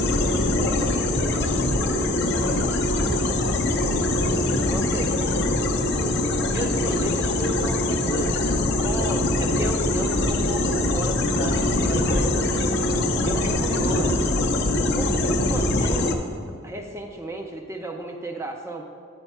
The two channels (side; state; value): both; normal; correlation 0.53